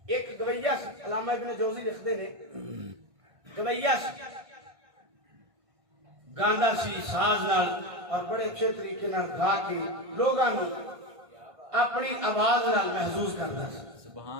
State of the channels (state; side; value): late; left; 1.6 ms